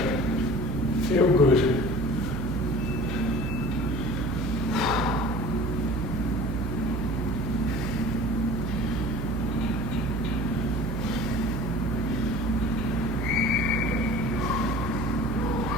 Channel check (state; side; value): noise; right; hum, 2 dB below the sound